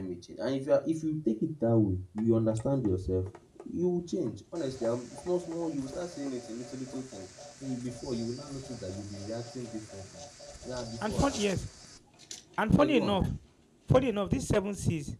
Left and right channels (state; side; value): identical; both; correlation 1.00